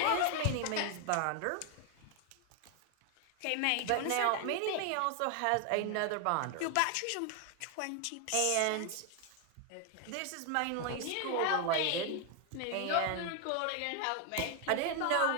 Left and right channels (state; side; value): different; both; correlation 0.01